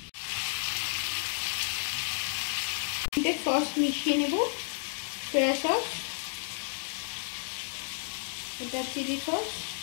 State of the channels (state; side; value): silent; right; digital silence